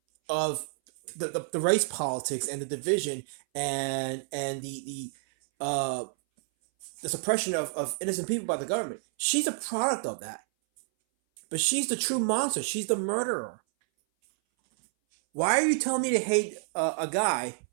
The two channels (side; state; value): left; silent; 59 dB below the other